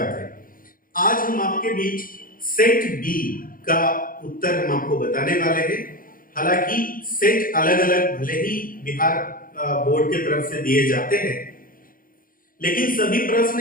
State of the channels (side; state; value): right; late; 0.41 ms